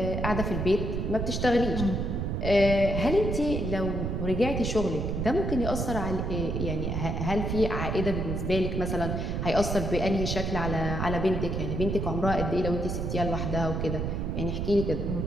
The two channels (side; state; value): right; noise; rumble, 1 dB below the sound